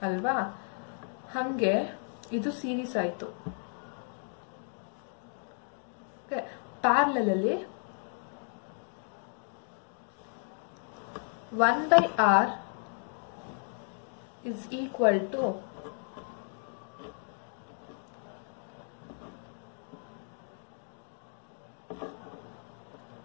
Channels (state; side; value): silent; right; 55 dB below the other